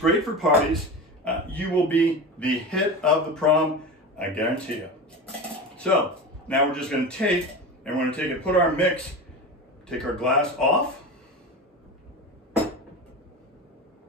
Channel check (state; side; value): normal; both; correlation 0.27